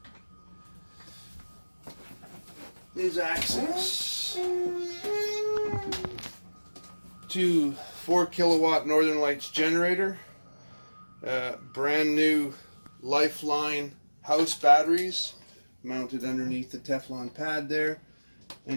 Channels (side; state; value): both; inverted; correlation -1.00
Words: is access to 4 kilowatt Northern Lights generator, brand new Lifeline house batteries mounted underneath the Teflon pad there,